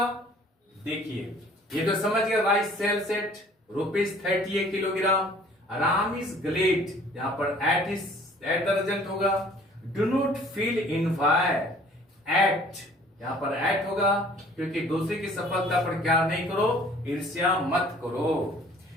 देखिए, ये तो समझ गए, rice sells at ₹38 kilogram, Ram is glad, यहां पर एट द रिजल्ट होगा। Do not feel envy, at यहाँ पर एट होगा, क्योंकि दूसरे की सफलता पर क्या नहीं करो, ईर्ष्या मत करो।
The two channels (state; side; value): normal; both; correlation 0.54